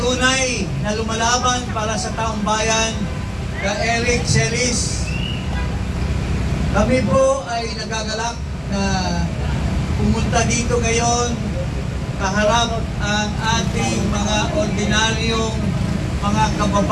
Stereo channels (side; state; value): both; identical; correlation 1.00